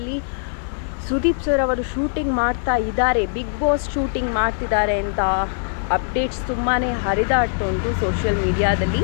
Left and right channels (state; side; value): silent; right; digital silence